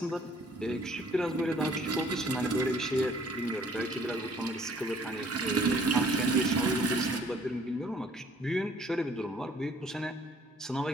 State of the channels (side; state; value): both; normal; correlation 0.58